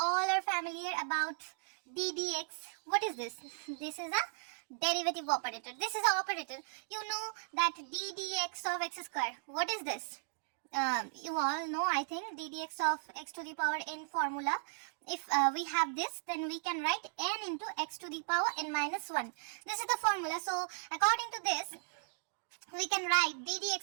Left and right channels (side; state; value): left; silent; digital silence